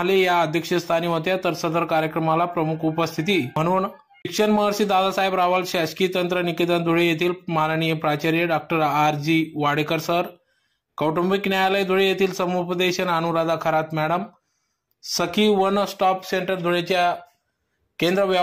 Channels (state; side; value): identical; both; correlation 1.00